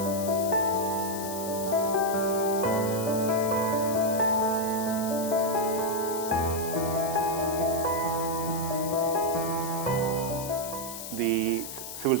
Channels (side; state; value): left; noise; hiss, 9 dB below the sound